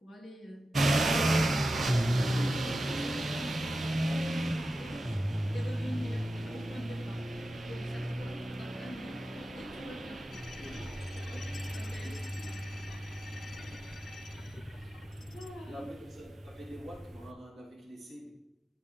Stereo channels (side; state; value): both; normal; correlation 0.93